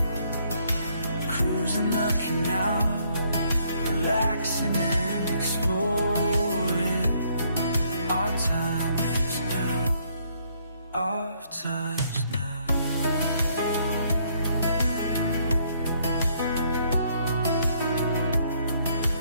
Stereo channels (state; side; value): inverted; both; correlation -0.68